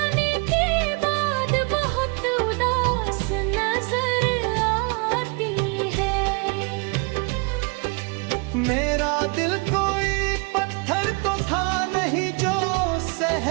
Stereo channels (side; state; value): left; quieter; 32.1 dB